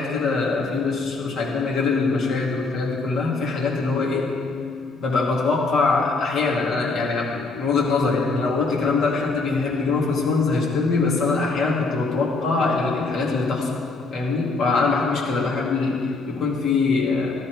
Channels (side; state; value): right; quieter; 3.7 dB